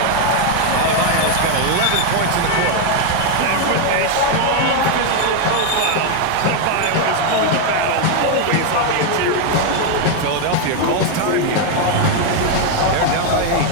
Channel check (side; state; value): both; different; correlation 0.01